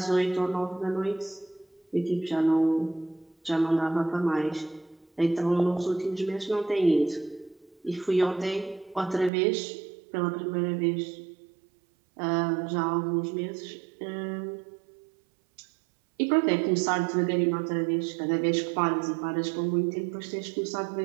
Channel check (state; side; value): drops out; left; at 9.3 s